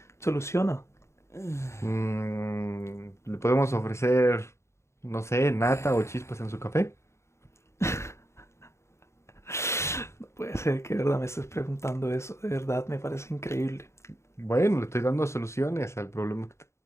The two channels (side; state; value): right; late; 0.13 ms